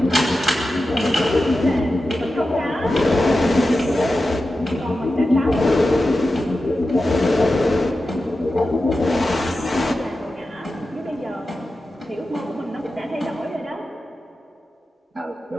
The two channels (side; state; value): both; normal; correlation 0.92